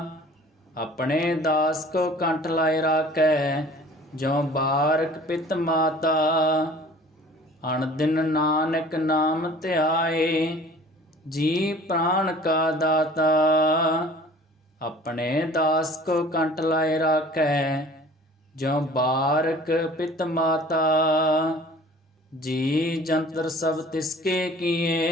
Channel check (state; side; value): normal; both; correlation 0.48